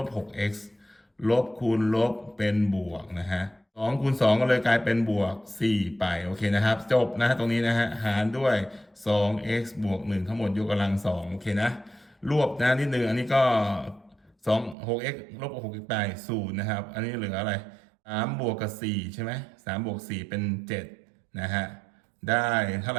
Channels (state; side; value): drops out; left; at 14.8 s